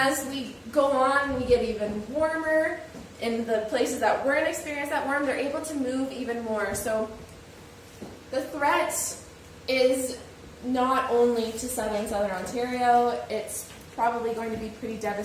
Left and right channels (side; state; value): both; identical; correlation 1.00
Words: we go on, we get even warmer. In the places that weren't experienced that warm, they're able to move even more. So the threat is not only to southern Ontario, it's probably going to be pretty